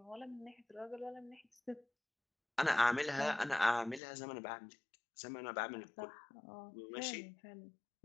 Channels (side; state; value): right; drops out; at 4.0 s